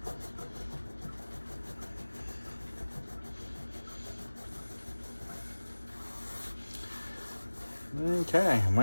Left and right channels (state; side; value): inverted; both; correlation -1.00